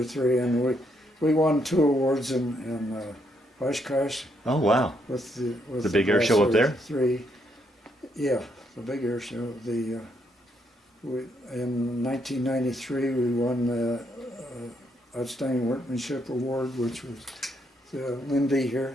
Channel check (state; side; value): normal; both; correlation 0.75